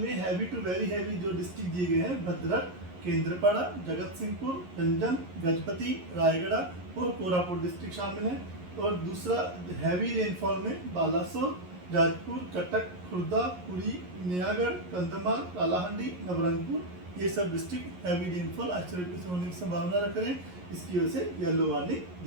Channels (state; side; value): late; left; 11 ms